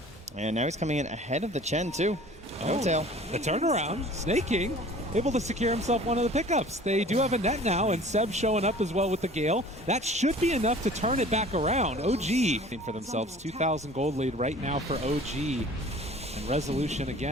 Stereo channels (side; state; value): both; normal; correlation 0.46